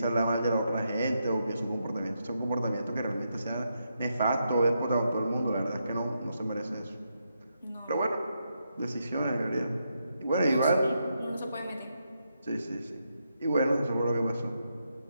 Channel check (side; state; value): both; inverted; correlation -0.82